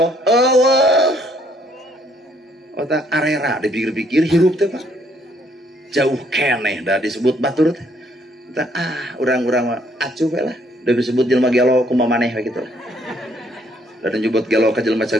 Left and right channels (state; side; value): normal; both; correlation 0.67